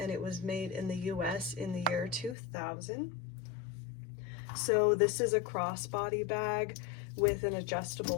it was made in the US in the year 2000. So this is a crossbody bag with an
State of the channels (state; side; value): drops out; right; at 2.4 s